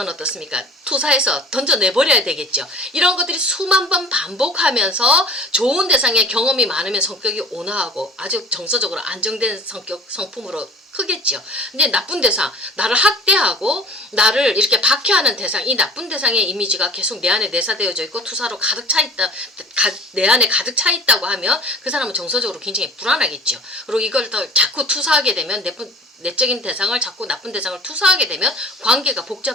어떻습니까? 투사해서 던져내버려야 되겠죠. 이런 것들이 수만 번 반복하면서 좋은 대상의 경험이 많으면 성격이 온화하고 아주 정서적으로 안정된 성품으로 크겠죠. 근데 나쁜 대상, 나를 학대하고 나를 이렇게 박해하는 대상, 이 나쁜 대상의 이미지가 계속 내 안에 내사되어져 있고 투사로 가득 차 있다, 내 안에 가득 차 있다고 하면 그 사람은 정서적으로 굉장히 불안하겠죠. 그리고 이걸 더 자꾸 투사하게 되면 내적인 대상을 자꾸 나쁜 대상을 투사하게 되면 관계가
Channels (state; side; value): normal; both; correlation 0.44